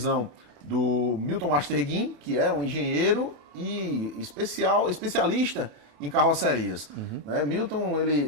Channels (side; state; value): left; late; 28 ms